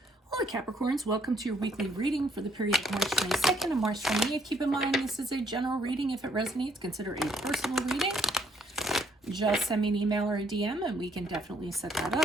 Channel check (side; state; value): both; normal; correlation 0.67